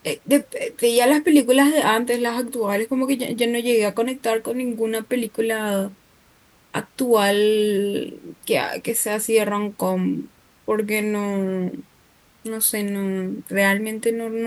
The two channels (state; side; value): identical; both; correlation 1.00